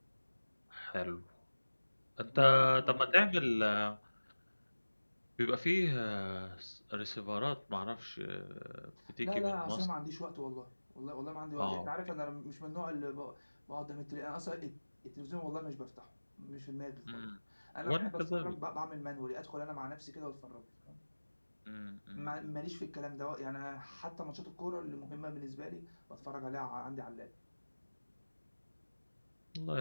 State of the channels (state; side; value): inverted; both; correlation -1.00